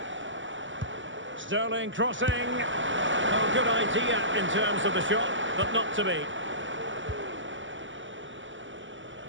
Sterling crossing. Oh, good idea in terms of the shot, but not to be.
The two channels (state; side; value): late; left; 0.55 ms